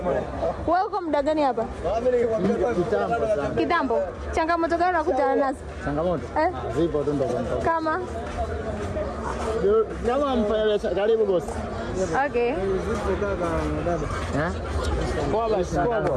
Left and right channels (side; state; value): both; identical; correlation 1.00